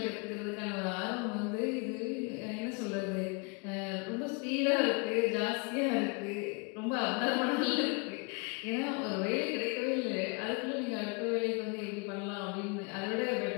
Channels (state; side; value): quieter; right; 32.4 dB